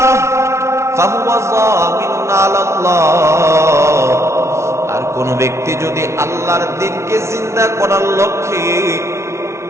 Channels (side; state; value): left; late; 0.13 ms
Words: ফাহুয়া যামিনুন আলাল্লাহ, আর কোন ব্যক্তি যদি আল্লাহর দ্বীনকে জিন্দা করার লক্ষ্যে